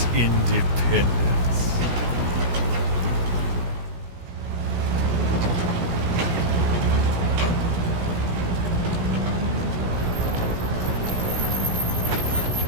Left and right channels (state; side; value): late; left; 17 ms